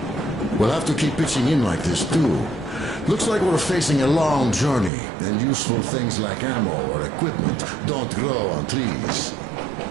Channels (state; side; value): drops out; left; at 4.9 s